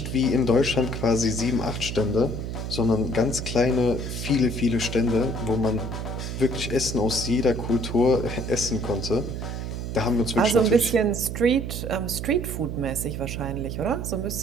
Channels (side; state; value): right; noise; hum, 5 dB below the sound